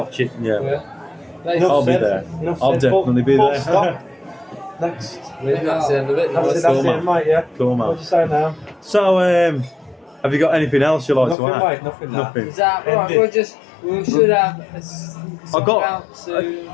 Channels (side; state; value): right; drops out; at 11.4 s